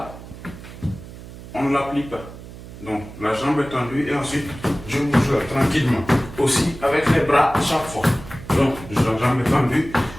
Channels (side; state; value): right; noise; hum, 15 dB below the sound